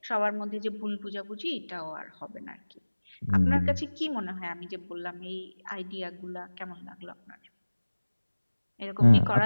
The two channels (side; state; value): both; inverted; correlation -1.00